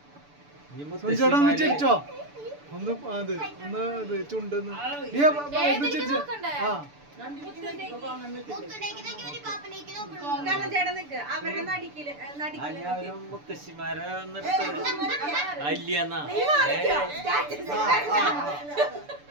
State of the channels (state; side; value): late; left; 6.9 ms